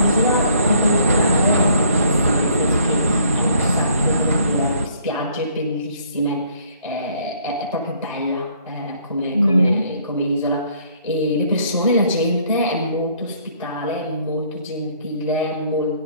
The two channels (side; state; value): both; inverted; correlation -0.62